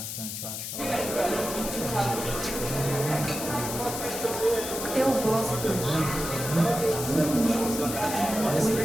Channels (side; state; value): left; noise; hiss, 6 dB below the sound